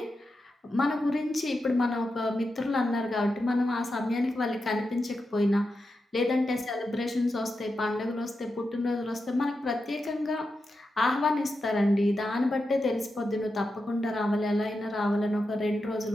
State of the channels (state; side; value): normal; both; correlation 0.89